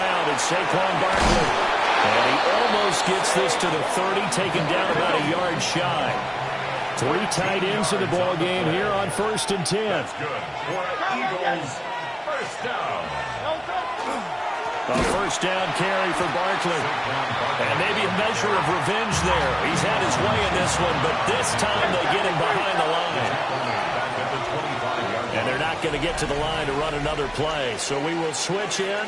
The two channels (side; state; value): both; identical; correlation 1.00